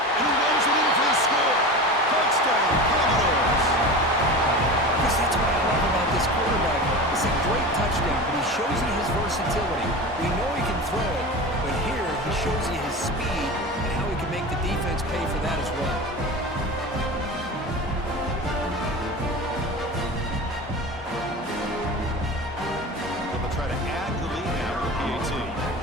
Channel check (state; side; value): normal; both; correlation 0.30